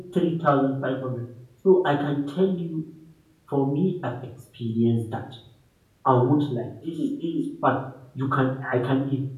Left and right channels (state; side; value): identical; both; correlation 1.00